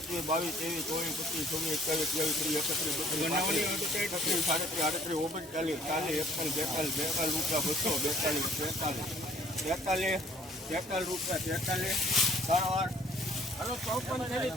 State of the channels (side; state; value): both; normal; correlation 0.59